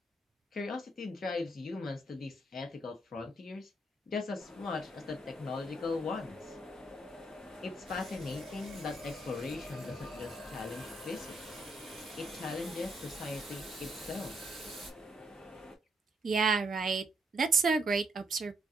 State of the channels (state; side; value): normal; both; correlation 0.74